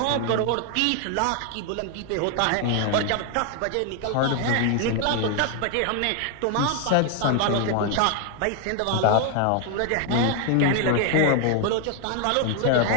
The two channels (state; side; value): different; both; correlation 0.00